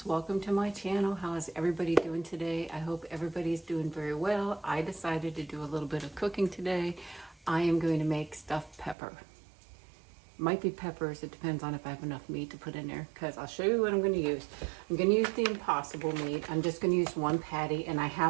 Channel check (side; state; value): left; drops out; at 9.0 s